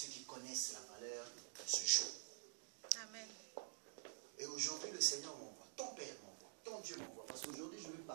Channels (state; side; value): silent; left; digital silence